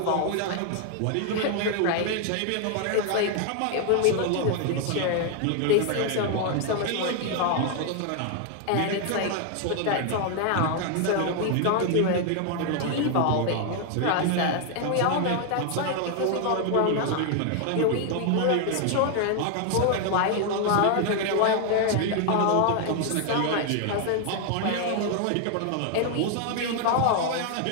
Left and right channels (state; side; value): different; both; correlation 0.00